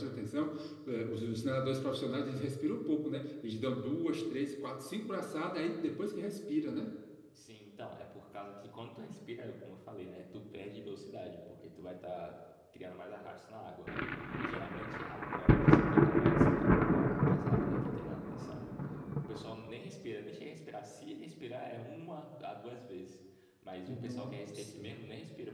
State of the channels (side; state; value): both; identical; correlation 1.00